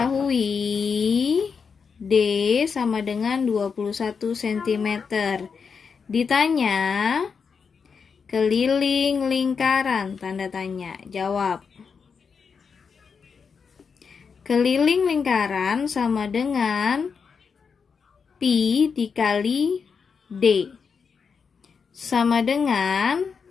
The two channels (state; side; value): quieter; right; 5.8 dB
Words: D sama dengan 21 cm. Ditanya keliling lingkaran, tanda tanya, jawab. Keliling lingkaran sama dengan pi dikali D. Sama dengan,